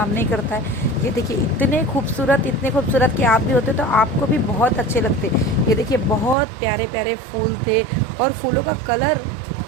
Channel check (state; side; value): drops out; left; at 6.4 s